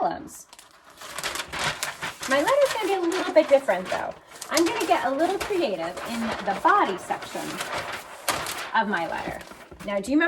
My letter's going to be a little bit different, though. I'm going to get a little creative in the body section of my letter. Now, do you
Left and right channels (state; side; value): identical; both; correlation 1.00